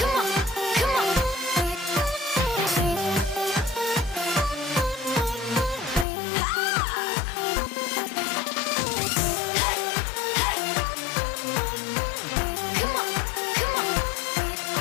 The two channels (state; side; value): drops out; right; at 6.1 s